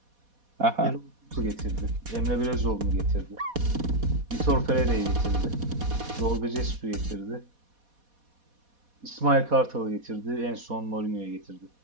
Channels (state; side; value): late; left; 4.2 ms